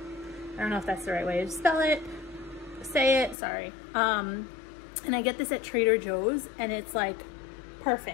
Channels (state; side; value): drops out; right; at 3.4 s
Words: I don't know if that's the right way to spell it, say it, sorry. And I get this at Trader Joe's, and it's like